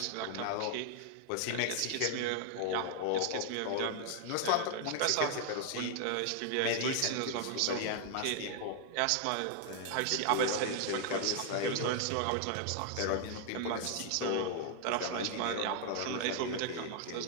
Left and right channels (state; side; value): different; both; correlation 0.00